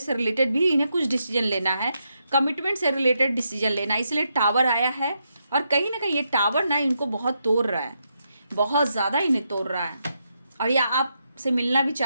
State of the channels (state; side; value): inverted; both; correlation -0.81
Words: से रिलेटेड भी इन्हें कुछ डिसीजन लेना है, कमिटमेंट से रिलेटेड डिसीजन लेना है, इसलिए टावर आया है। और कहीं ना कहीं ये टावर ना इनको बहुत तोड़ रहा है, बहुत ज़्यादा इन्हें तोड़ रहा है, और या आपसे मिलना भी